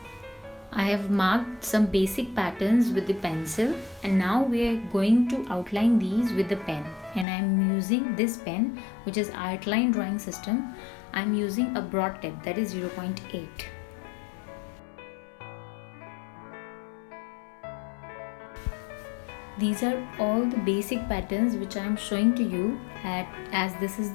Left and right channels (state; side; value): drops out; right; at 7.2 s